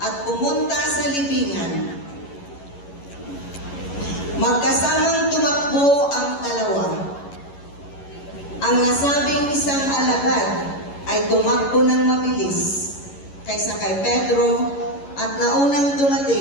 at pumunta sa libingan. Magkasamang tumakbo ang dalawa. Ang nasabing isang alagad ay tumakbo ng mabilis kaysa kay Pedro at naunang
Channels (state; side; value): late; right; 11 ms